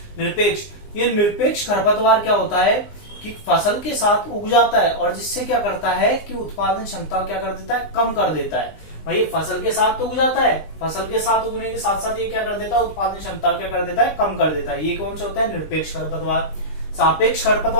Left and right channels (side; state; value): right; late; 20 ms